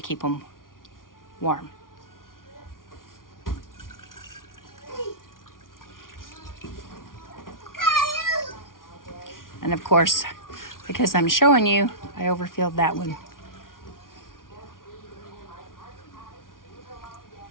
them warm. And of course, because I'm showing you, I overfilled that one.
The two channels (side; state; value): right; late; 0.90 ms